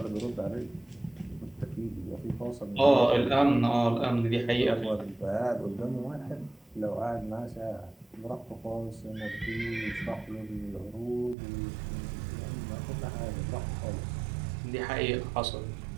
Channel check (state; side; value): drops out; left; at 11.4 s